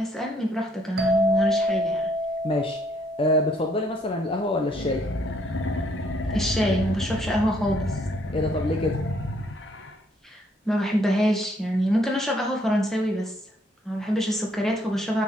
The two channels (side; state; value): both; normal; correlation 0.68